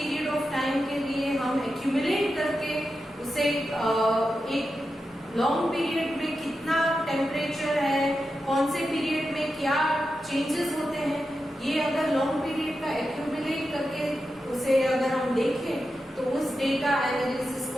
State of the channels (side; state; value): both; normal; correlation 0.89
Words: of time के लिए हम accumulate करके उसे एक long period में कितना temperature है, कौन से period में क्या changes होते हैं, ये अगर long period का accumulate करके उसे अगर हम देखें तो उस data analysis